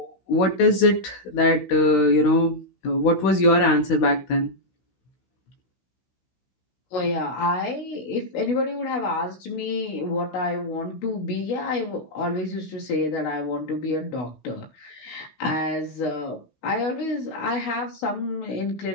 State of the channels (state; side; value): late; right; 16 ms